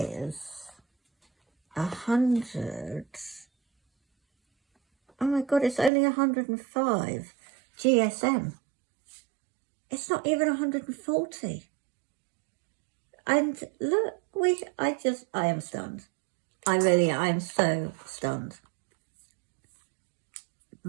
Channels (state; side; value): drops out; left; at 5.9 s